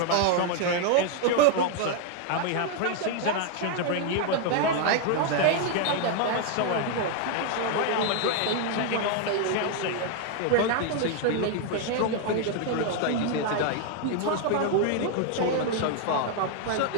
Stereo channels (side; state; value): both; different; correlation 0.00